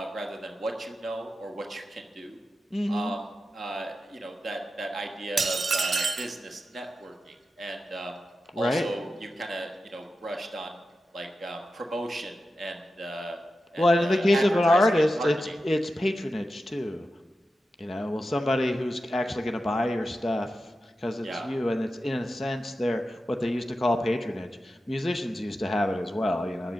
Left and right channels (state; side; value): normal; both; correlation 0.91